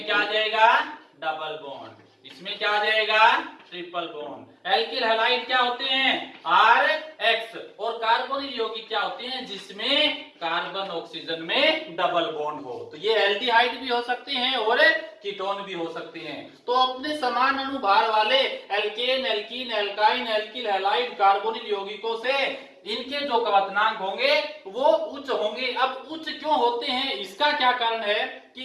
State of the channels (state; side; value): identical; both; correlation 1.00